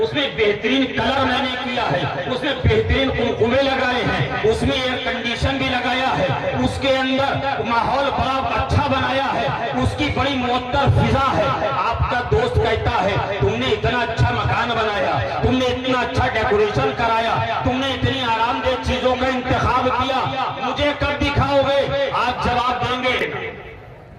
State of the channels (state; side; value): identical; both; correlation 1.00